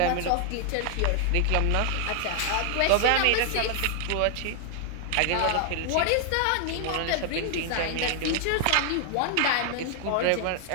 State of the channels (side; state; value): both; different; correlation 0.00